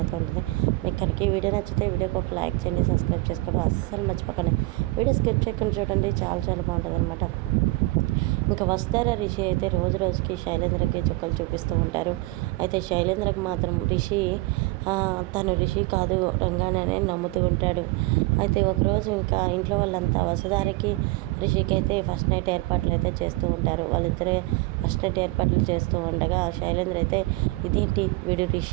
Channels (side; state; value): left; quieter; 22.0 dB